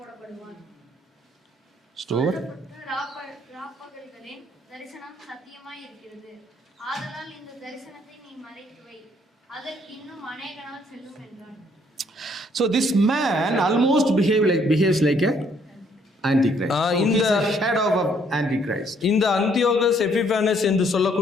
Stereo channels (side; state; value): both; normal; correlation 0.66